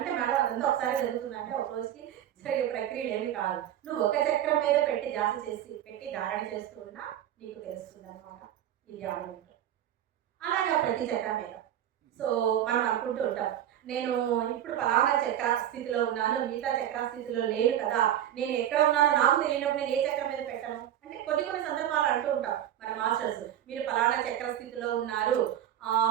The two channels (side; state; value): left; quieter; 11.3 dB